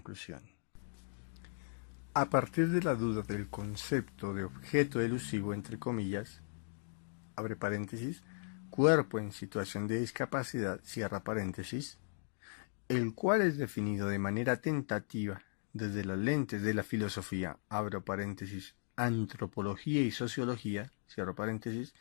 A partir de la duda del concepto de objeto elusivo, entre comillas, abre paréntesis, cuerpo en situación de discapacidad, cierra paréntesis, el cual es definido de manera tentativa desde las lentes de la filosofía, abro paréntesis, antropología y sociología, cierro paréntesis,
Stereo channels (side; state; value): right; silent; digital silence